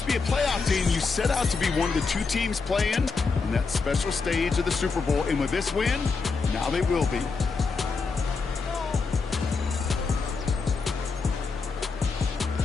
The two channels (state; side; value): quieter; right; 4.6 dB